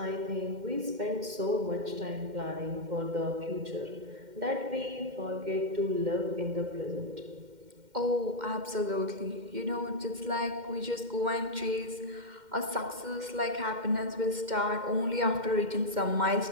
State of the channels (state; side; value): late; left; 2.1 ms